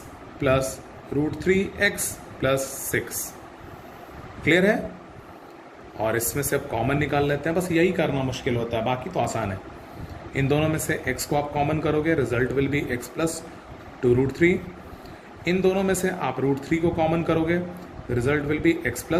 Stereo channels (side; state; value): both; identical; correlation 1.00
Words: plus root 3 x plus 6. Clear है. और इसमें से अब कॉमन निकाल लेते हैं. बस यही करना मुश्किल होता है, बाकी तो आसान है. इन दोनों में से x को आप कॉमन करोगे, result will be x plus 2 root 3. इन दोनों में से आप रूट 3 को कॉमन करोगे, result will be x